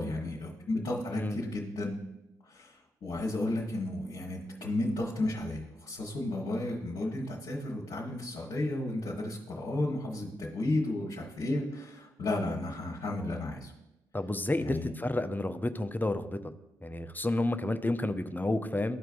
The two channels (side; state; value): both; normal; correlation 0.88